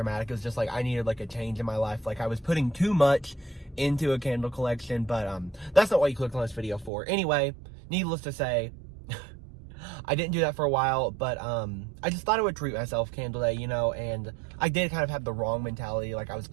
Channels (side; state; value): left; drops out; at 6.9 s